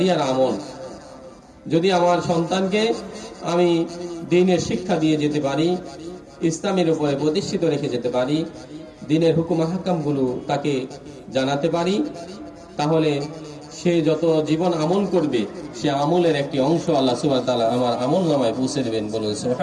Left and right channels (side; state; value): both; identical; correlation 1.00